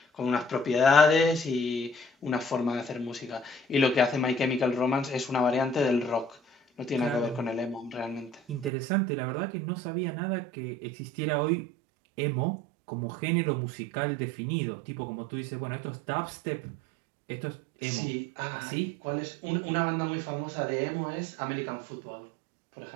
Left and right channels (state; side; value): drops out; left; at 8.7 s